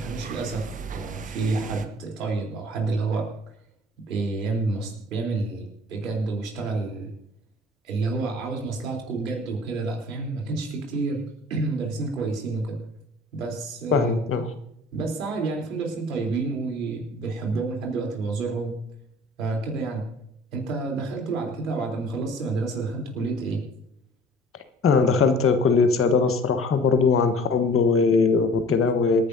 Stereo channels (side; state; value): both; normal; correlation 0.49